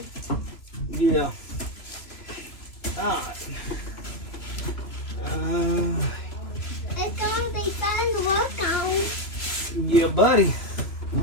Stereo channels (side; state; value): right; late; 2.9 ms